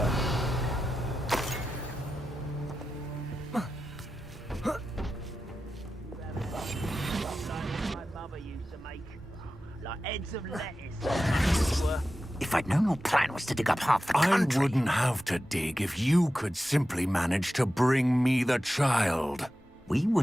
My mother used to make, like heads of lettuce. If I'd known your plan was to dig up half the country... I wouldn't have to dig if you could simply manage to bring me the child. We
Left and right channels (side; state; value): both; normal; correlation 0.92